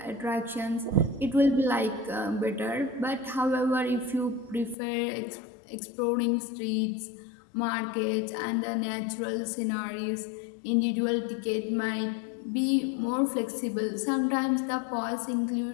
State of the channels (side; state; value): right; drops out; at 4.8 s